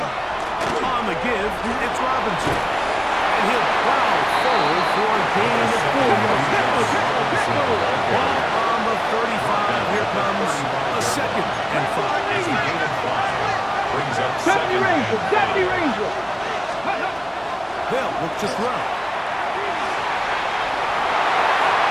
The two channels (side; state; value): both; identical; correlation 1.00